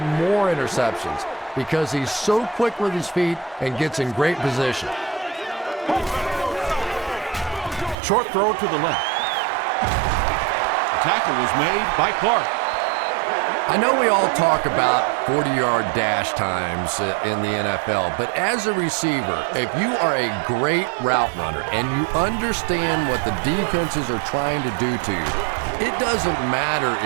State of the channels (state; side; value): drops out; left; at 8.0 s